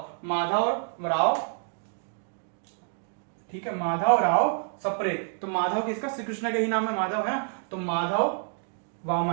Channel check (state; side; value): silent; left; 59 dB below the other